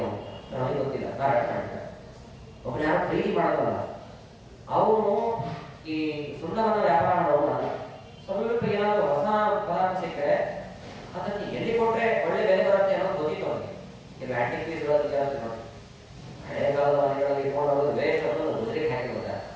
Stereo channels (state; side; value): identical; both; correlation 1.00